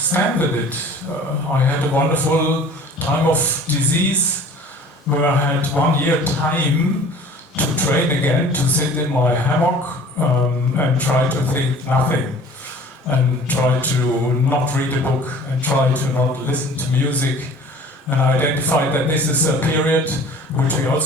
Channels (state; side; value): normal; both; correlation 0.46